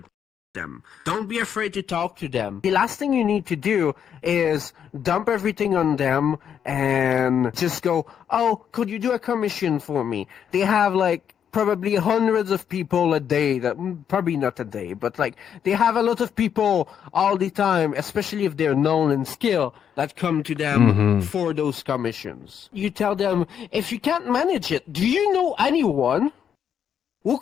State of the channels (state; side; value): quieter; right; 8.4 dB